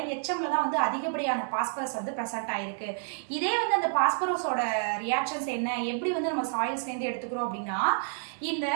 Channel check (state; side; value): silent; left; 57 dB below the other